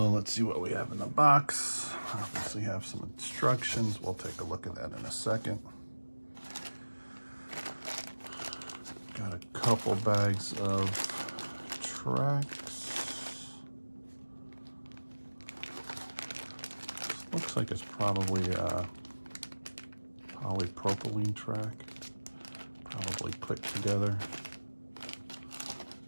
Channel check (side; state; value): both; inverted; correlation -1.00